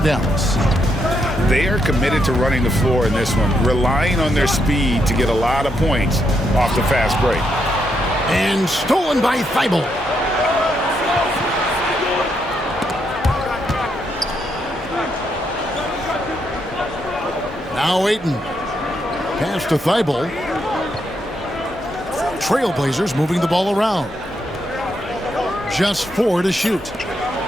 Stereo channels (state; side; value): normal; both; correlation 0.79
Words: Dallas. They are committed to running the floor in this one, relying on their speed to get a lot of points off the fast break. And stolen by Thibault. Now Ayton. Pass to Thibault. Trailblazers moving the ball around. Just 4 to shoot.